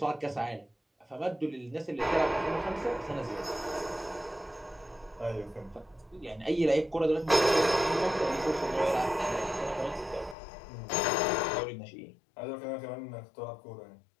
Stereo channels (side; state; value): right; drops out; at 10.4 s